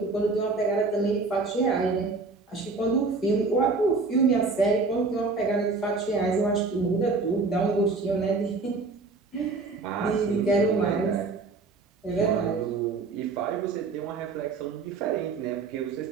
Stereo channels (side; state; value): left; quieter; 4.0 dB